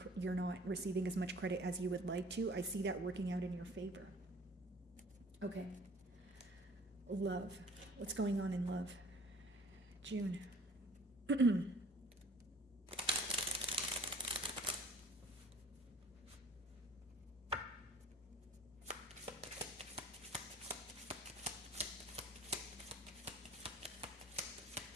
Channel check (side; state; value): both; normal; correlation 0.49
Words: not receiving as much credit as you would like to, I see that working out in your favor. Okay. Love. What's going on in love? June.